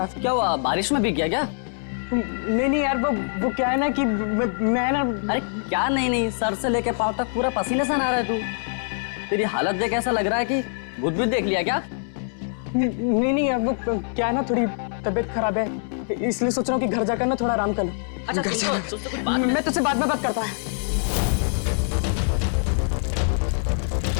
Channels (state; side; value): silent; right; 63 dB below the other